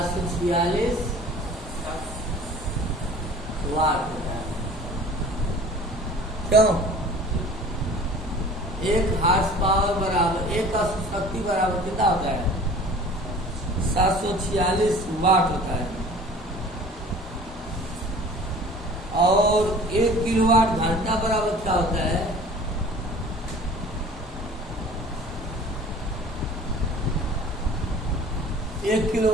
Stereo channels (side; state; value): both; normal; correlation 0.46